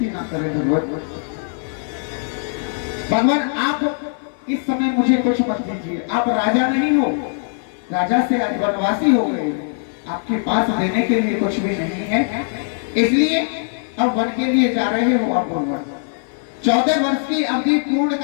ना करें भगवान। भगवान आप इस समय मुझे कुछ मत दीजिए, आप राजा नहीं हो, राजा से आज वनवासी हो गए, आपके पास देने के लिए कुछ भी नहीं है, इसलिए अब वन के लिए जा रहे हो आप भगवान। 14 वर्ष की अवधि पूर्ण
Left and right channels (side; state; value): right; silent; digital silence